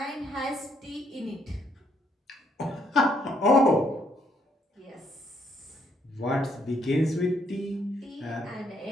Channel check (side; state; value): both; normal; correlation 0.71